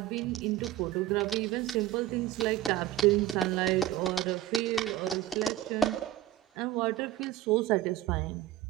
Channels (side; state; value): left; quieter; 13.2 dB